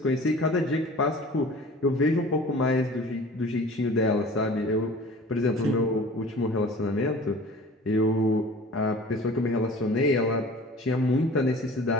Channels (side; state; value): both; normal; correlation 0.44